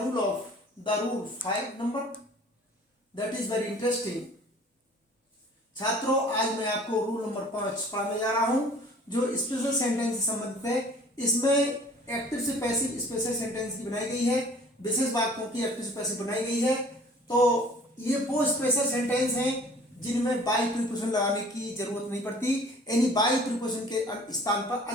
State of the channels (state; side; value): normal; both; correlation 0.50